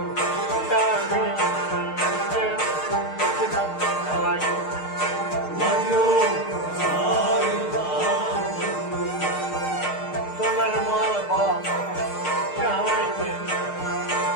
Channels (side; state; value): right; late; 6.5 ms